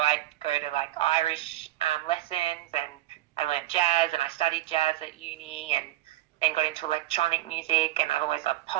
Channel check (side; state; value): left; quieter; 15.5 dB